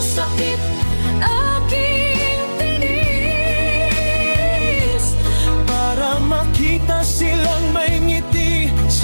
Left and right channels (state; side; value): inverted; both; correlation -1.00